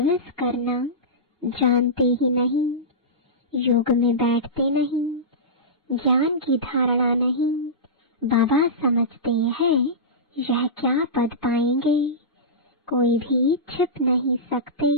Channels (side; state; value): both; normal; correlation -0.17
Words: करना जानते ही नहीं, योग में बैठते नहीं, ज्ञान की धारणा नहीं। बाबा समझते हैं यह क्या पद पाएंगे, कोई भी छिप नहीं सकते।